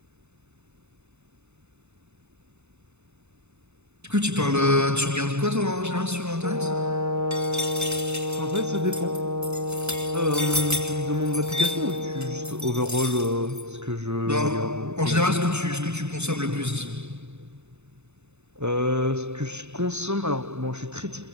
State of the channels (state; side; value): late; left; 0.82 ms